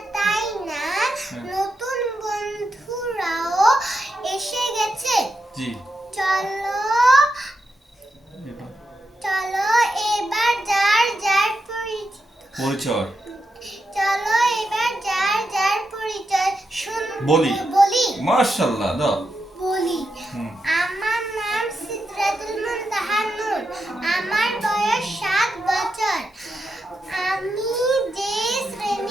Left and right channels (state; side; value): normal; both; correlation 0.86